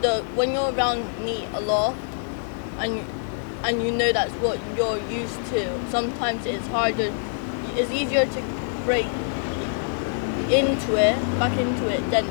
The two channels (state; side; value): silent; right; digital silence